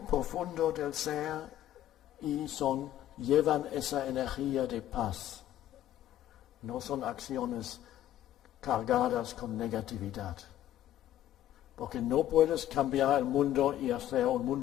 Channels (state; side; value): quieter; right; 12.4 dB